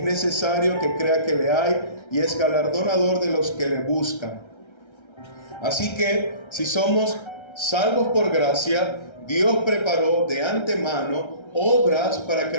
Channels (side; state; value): right; late; 1.3 ms